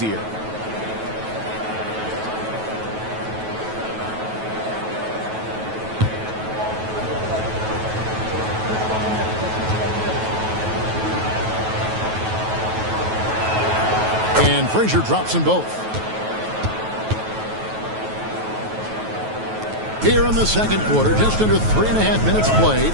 And Frazier drops them both. Here in the second quarter, just under 3.5 minutes played.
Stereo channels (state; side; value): late; left; 9.2 ms